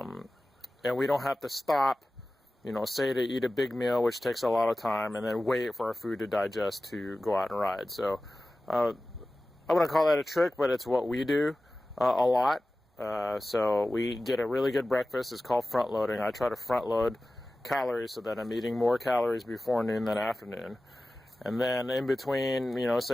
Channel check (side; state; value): both; normal; correlation 0.96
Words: we don't have to stop, say to eat a big meal, which takes a lot of time, and then wait for our food to digest to go out and ride. So I wouldn't call that a trick, but it's what we do a lot. So we get a really good breakfast. It's called front loading. I try to front load calories so that I'm eating more calories before noon than afternoon. And then in between,